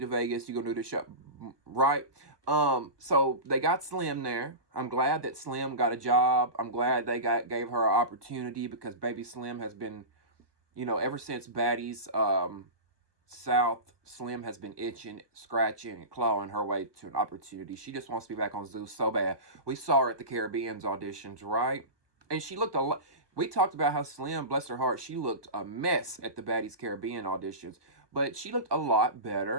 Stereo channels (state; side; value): late; left; 1.2 ms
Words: to Vegas. You're gonna do the show, right? So they got Slim there. I'm glad that Slim got a job. I'm glad they gave her an opportunity because baby Slim has been, ever since Baddies South, Slim has been itching, scratching, and clawing her way to an opportunity. She just wants to be back on Zeus so bad. We saw her at the Caribbean's auditions, right? And she looked a lot. We talked about how Slim, bless her heart, she looked a mess at the Baddies Caribbean auditions, but she looked a lot